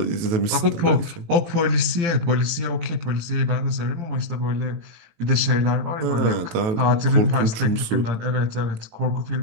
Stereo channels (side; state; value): left; late; 18 ms